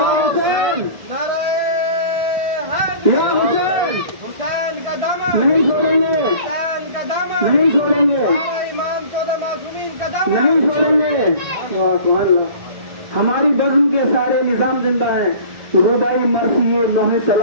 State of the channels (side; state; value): left; late; 1.6 ms